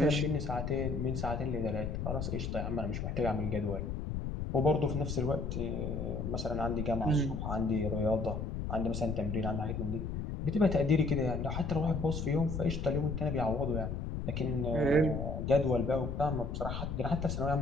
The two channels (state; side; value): noise; left; rumble, 3 dB below the sound